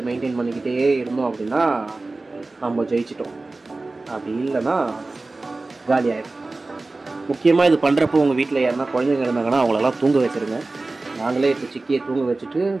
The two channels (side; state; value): left; quieter; 3.3 dB